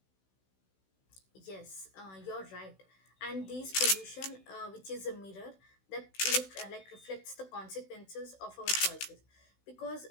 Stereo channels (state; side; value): late; right; 16 ms